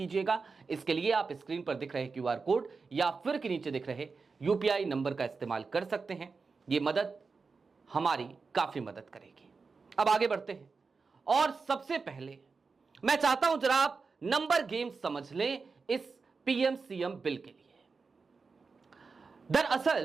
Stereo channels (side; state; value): left; quieter; 4.6 dB